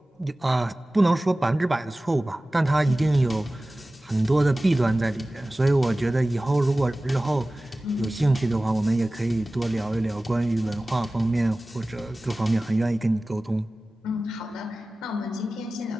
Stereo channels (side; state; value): both; normal; correlation 0.97